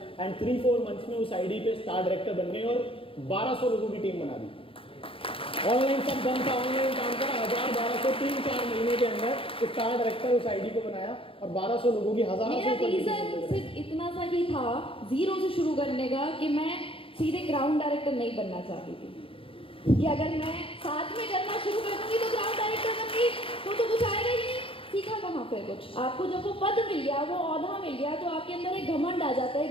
एंड 3-4 मंथ्स में उस आईडी पे स्टार डायरेक्टर बन गए और 1200 लोगों की टीम बना दी। ऑनलाइन सब बंद था, ऑनलाइन काम करा, 1000-1200 3-4 महीने के अंदर स्टार डायरेक्टर उस आईडी को बनाया और 1200 लोगों की 1000 मेरा रीजन सिर्फ इतना सा ही था जीरो से शुरू करने का, कि मैं सीधे ग्राउंड डायरेक्टर नहीं बनना चाहती थी, कि अगर मैं साथ में करना शुरू कर दूंगी तो ग्राउंड डायरेक्टर बनूंगी तो कुछ आएगा ही नहीं। सीखा कहाँ पे कुछ? आपको जब वो पद मिल गया, वो ओहदा मिल गया, तो आपके अंदर एक घमंड आ जाता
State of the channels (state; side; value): late; right; 0.26 ms